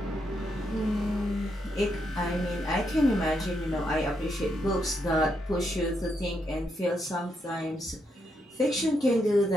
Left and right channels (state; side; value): normal; both; correlation 0.79